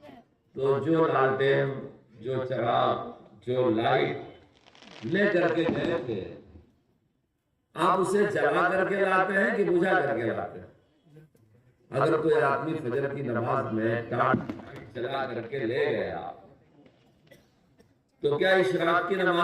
تو جو لالٹین، جو چراغ، جو لائٹ لے کر کے گئے تھے، آپ اسے جلا کر کے لاتے ہیں کہ بجھا کر کے لاتے ہیں؟ اگر کوئی آدمی فجر کی نماز میں ٹارچ جلا کر کے لے گیا تو کیا اشراق کی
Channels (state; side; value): identical; both; correlation 1.00